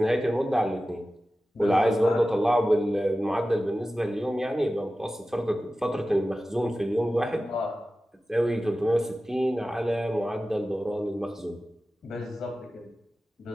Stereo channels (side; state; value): both; normal; correlation 0.95